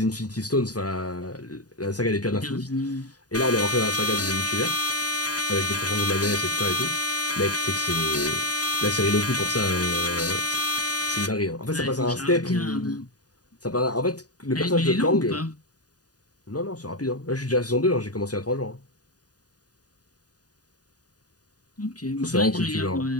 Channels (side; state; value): right; late; 0.68 ms